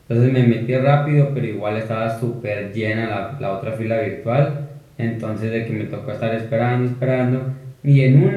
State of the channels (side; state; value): both; identical; correlation 1.00